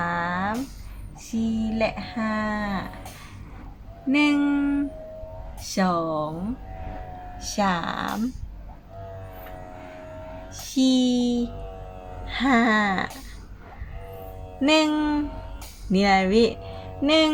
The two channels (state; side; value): identical; both; correlation 1.00